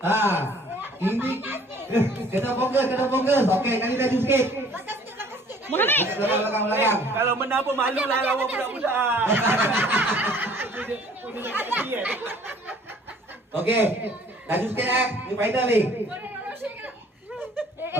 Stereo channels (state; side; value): normal; both; correlation 0.55